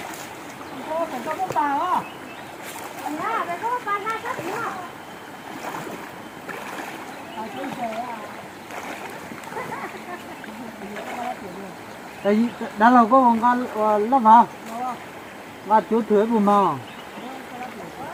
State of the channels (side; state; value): both; identical; correlation 1.00